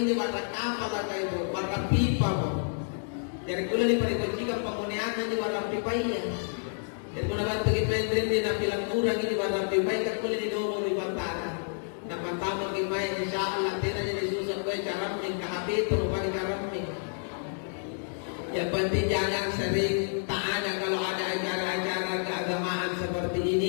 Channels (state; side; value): silent; right; digital silence